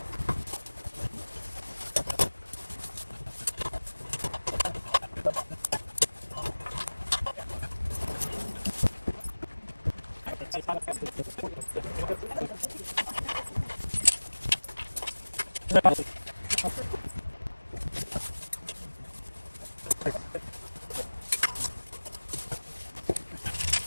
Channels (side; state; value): both; inverted; correlation -1.00